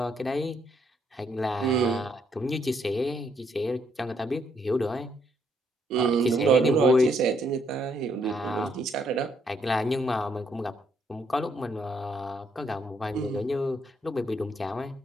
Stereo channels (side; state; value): both; normal; correlation 0.72